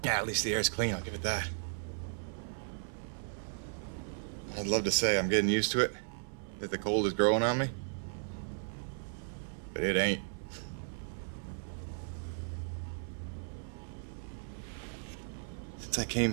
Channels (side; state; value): left; silent; 54 dB below the other